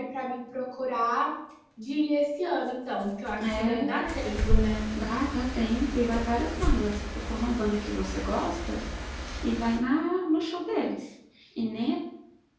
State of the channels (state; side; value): identical; both; correlation 1.00